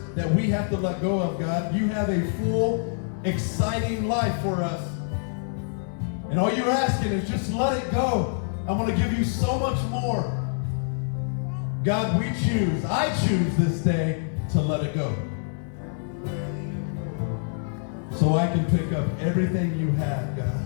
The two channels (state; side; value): silent; right; 60 dB below the other